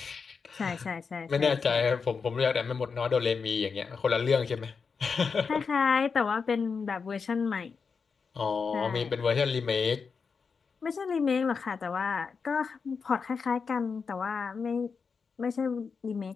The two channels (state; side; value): quieter; right; 5.4 dB